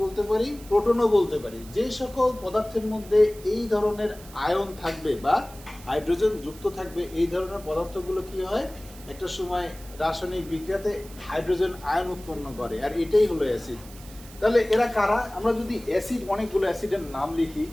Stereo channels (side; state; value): right; noise; hiss, 20 dB below the sound